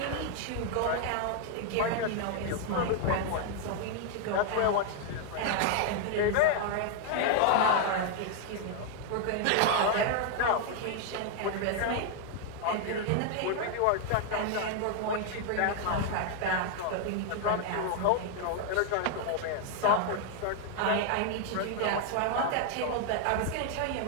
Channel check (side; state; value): both; different; correlation 0.00